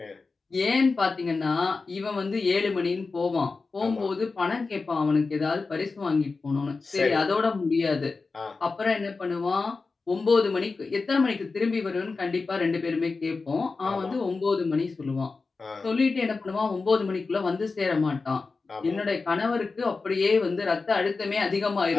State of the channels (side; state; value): right; quieter; 4.1 dB